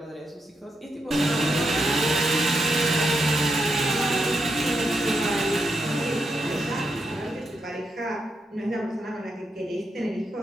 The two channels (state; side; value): normal; both; correlation 0.82